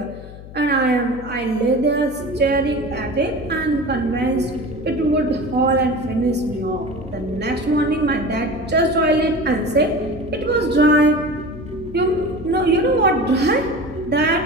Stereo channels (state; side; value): noise; left; hum, 15 dB below the sound